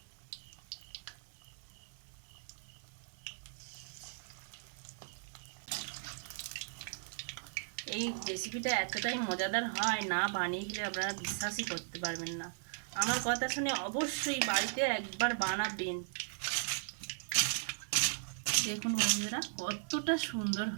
এই রেসিপিটা এতটাই মজাদার হয়, না বানিয়ে গেলে আপনারা বিশ্বাসই করতে পারবেন না। আমার কথা শুনে অবশ্যই বাড়িতে একবার বানাবেন। দেখুন বন্ধুরা কতটা সুন্দর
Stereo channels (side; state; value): left; silent; digital silence